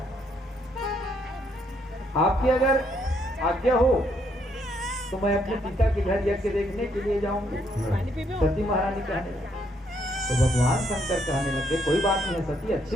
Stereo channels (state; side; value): normal; both; correlation 0.72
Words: आपकी अगर आज्ञा हो तो मैं अपने पिता के घर यज्ञ देखने के लिए जाऊंगी, सती महारानी कहने लगी। तो भगवान शंकर कहने लगे कोई बात नहीं है सती,